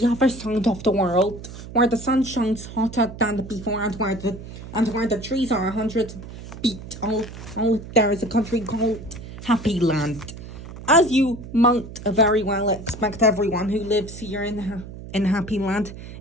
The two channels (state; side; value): noise; right; hum, 13 dB below the sound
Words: other side of the world, where the sun shines hotter than before and where the trees are 100 feet tall, there is a country called Happy Land. As you might very well expect, everyone who lives here in Happy Land